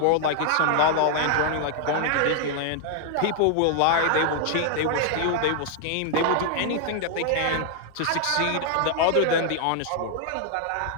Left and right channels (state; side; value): different; both; correlation 0.00